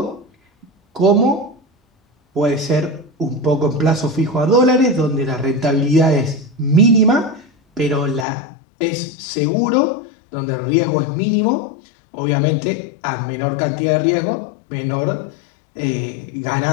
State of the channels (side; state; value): right; drops out; at 8.2 s